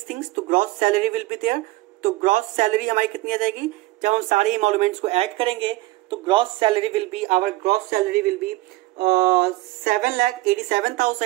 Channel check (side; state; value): left; quieter; 19.3 dB